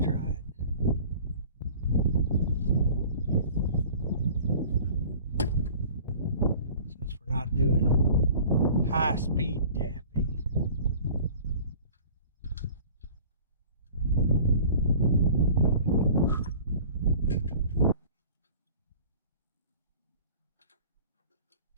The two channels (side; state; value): both; inverted; correlation -0.46